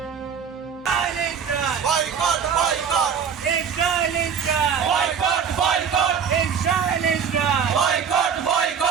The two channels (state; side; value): quieter; left; 7.1 dB